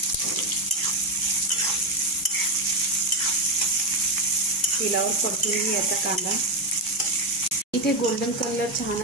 तेलावर परतून घ्यायचा कांदा। इथे गोल्डन कलर छान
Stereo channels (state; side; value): normal; both; correlation 0.07